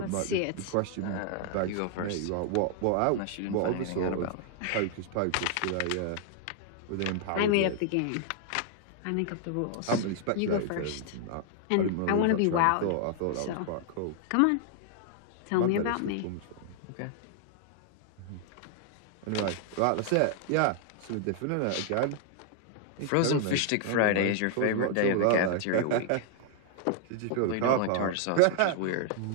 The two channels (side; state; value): both; different; correlation 0.00